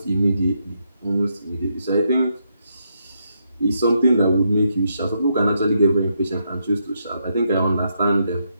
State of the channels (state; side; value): inverted; both; correlation -0.79